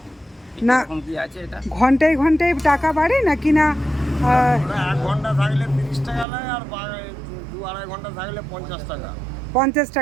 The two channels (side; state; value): left; drops out; at 6.2 s